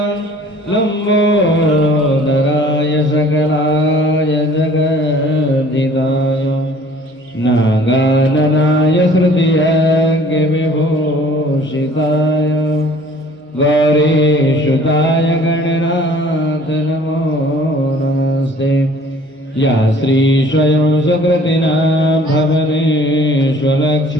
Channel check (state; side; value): normal; both; correlation 0.52